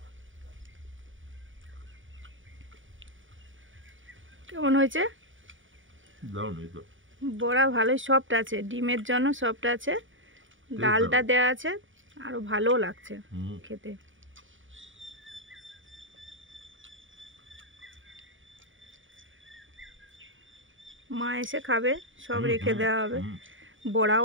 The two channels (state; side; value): late; left; 0.57 ms